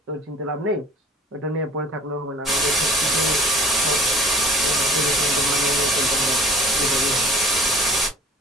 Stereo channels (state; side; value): normal; both; correlation 0.47